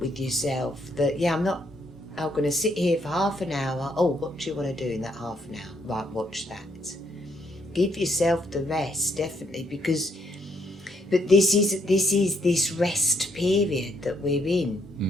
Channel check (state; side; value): normal; both; correlation 0.72